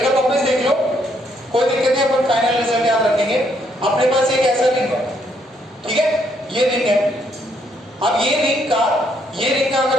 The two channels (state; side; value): normal; both; correlation 0.72